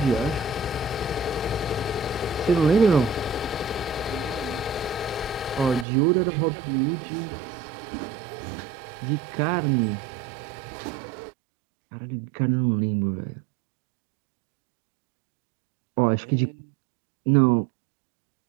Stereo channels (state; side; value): drops out; left; at 5.9 s